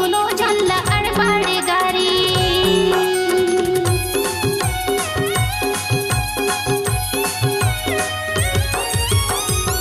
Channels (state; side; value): identical; both; correlation 1.00